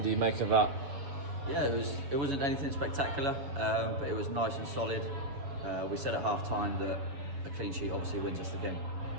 do you make of that? Yeah, it wasn't anything spectacular, but it was nice and solid. We said at half time that a clean sheet obviously wins us the game,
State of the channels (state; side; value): late; left; 7.2 ms